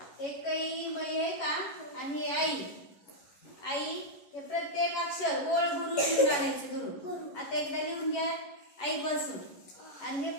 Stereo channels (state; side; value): late; right; 11 ms